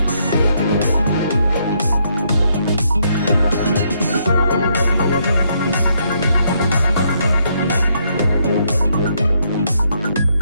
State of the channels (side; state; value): both; inverted; correlation -0.74